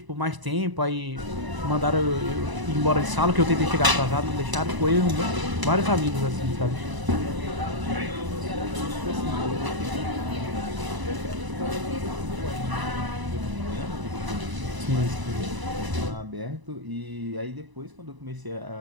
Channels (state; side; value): late; left; 1.0 ms